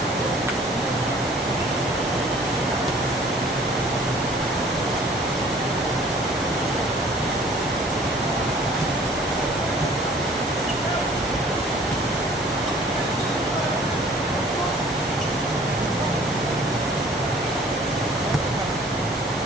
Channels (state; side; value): normal; both; correlation 0.53